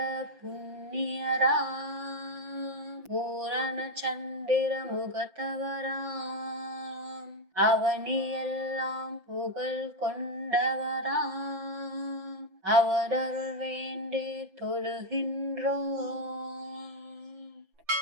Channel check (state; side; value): late; left; 5.9 ms